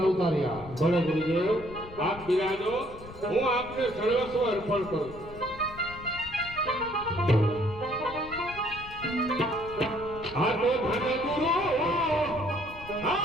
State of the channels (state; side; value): noise; left; rumble, 16 dB below the sound